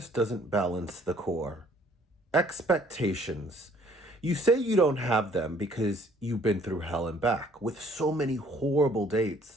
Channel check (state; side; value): normal; both; correlation 0.59